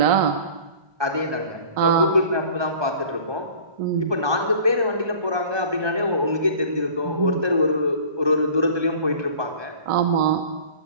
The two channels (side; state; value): left; late; 1.2 ms